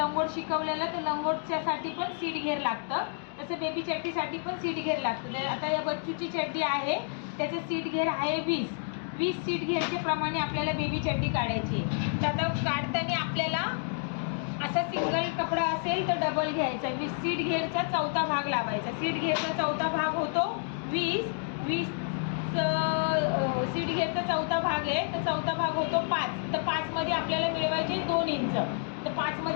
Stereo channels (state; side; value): silent; right; 57 dB below the other